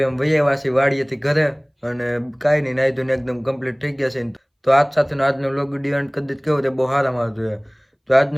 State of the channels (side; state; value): both; identical; correlation 1.00